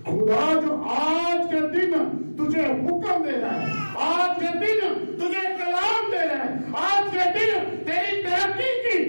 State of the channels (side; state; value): both; inverted; correlation -1.00